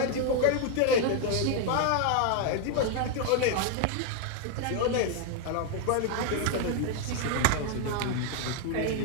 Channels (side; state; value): both; different; correlation 0.01